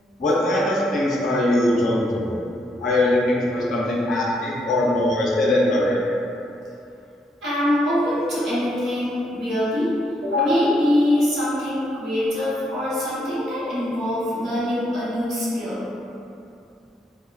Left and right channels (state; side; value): normal; both; correlation 0.74